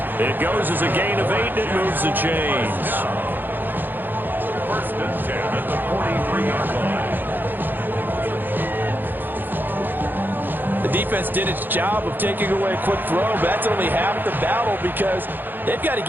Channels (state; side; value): late; left; 0.091 ms